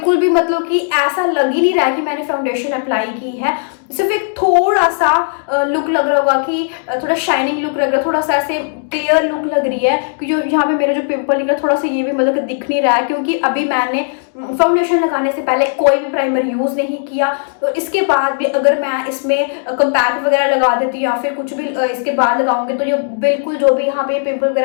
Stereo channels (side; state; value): right; silent; digital silence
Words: भी मतलब कि ऐसा लग ही नहीं रहा है कि मैंने फाउंडेशन अप्लाई की है। सिर्फ एक थोड़ा सा लुक लग रहा होगा कि थोड़ा शाइनिंग लुक लग रहा है, थोड़ा सा ऐसे क्लियर लुक लग रही है कि जो यहाँ पे मेरा जो पिंपल निकला थोड़ा सा ये भी मतलब कि दिख नहीं रहा है, क्योंकि अभी मैंने फाउंडेशन लगाने से पहले कोई भी प्राइमर यूज़ नहीं किया। तो इसके बाद भी अगर मैं इसमें कंपैक्ट वगैरह लगा देती हूँ या फिर कुछ भी इसके बाद लगाऊंगी तो ये बिल्कुल जो भी यहाँ पे पिंपल